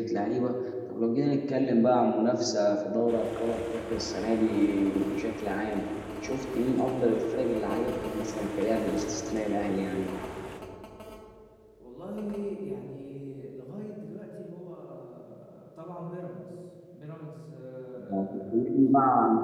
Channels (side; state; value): both; identical; correlation 1.00